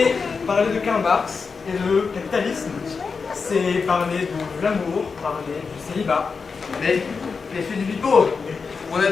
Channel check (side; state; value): right; quieter; 5.1 dB